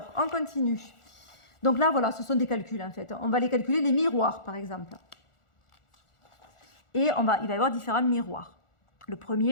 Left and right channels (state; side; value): late; right; 1.4 ms